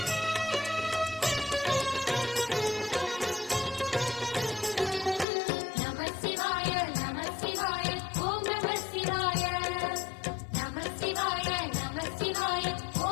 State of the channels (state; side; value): drops out; right; at 5.2 s